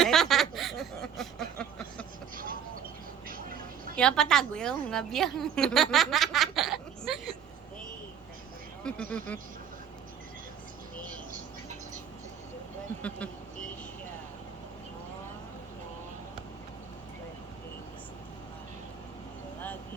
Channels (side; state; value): left; quieter; 8.1 dB